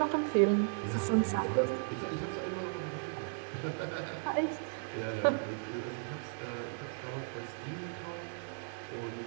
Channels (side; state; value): left; silent; digital silence